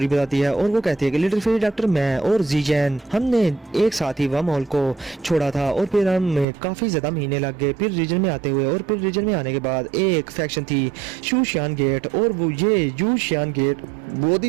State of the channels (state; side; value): drops out; left; at 6.5 s